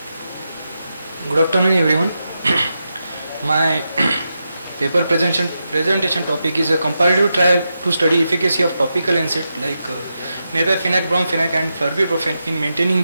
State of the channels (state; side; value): inverted; both; correlation -0.87